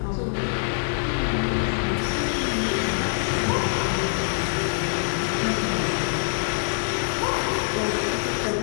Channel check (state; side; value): silent; right; 62 dB below the other